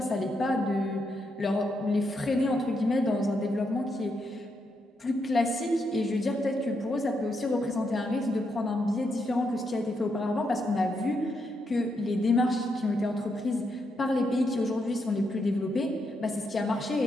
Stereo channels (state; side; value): normal; both; correlation 0.81